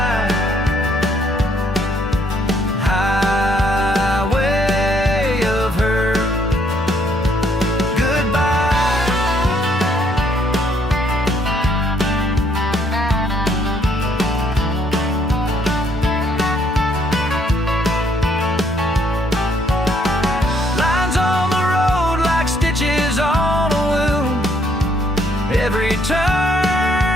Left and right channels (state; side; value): normal; both; correlation 0.68